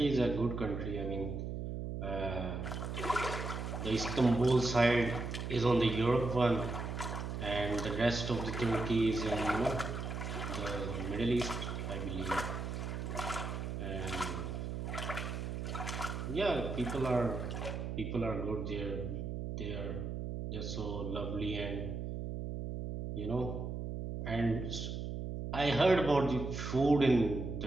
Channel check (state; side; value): noise; right; hum, 4 dB below the sound